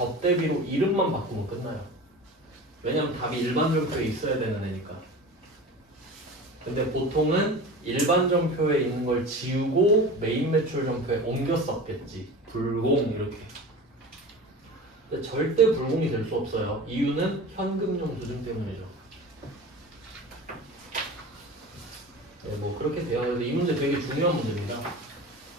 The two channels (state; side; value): normal; both; correlation 0.34